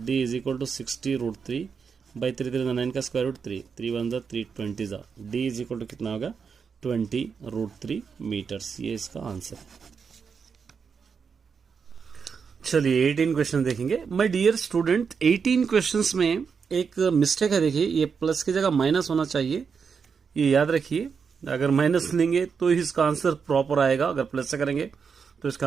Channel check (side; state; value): left; quieter; 6.0 dB